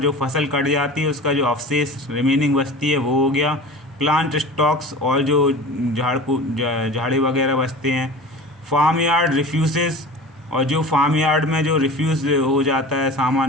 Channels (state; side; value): normal; both; correlation 0.36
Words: फसल कट जाती है उसका जो अवशेष रिमेनिंग बचती है वो हो गया, प्लांट स्टॉक्स और जो झाड़ी वगैरह बचते हैं, फार्म यार्ड रिफ्यूजेस और जो फार्म यार्ड में जो रिफ्यूज़ हो जाता है